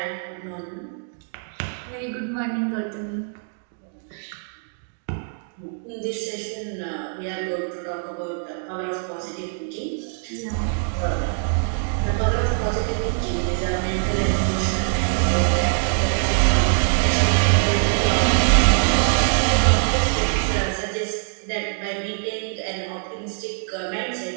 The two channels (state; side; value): silent; left; digital silence